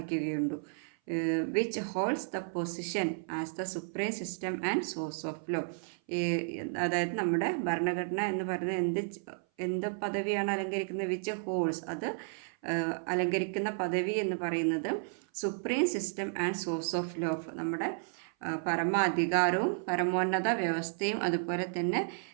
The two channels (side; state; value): left; silent; 56 dB below the other